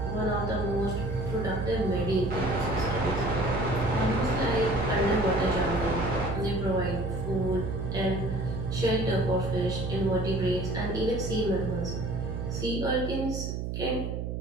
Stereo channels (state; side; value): noise; right; hum, 3 dB below the sound